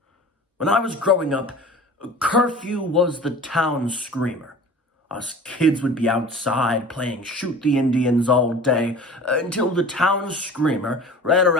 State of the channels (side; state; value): both; normal; correlation 0.40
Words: When I was growing up, curfew was the town screamer. Us kids would be outside playing shoot the Indians all day until the town screamer ran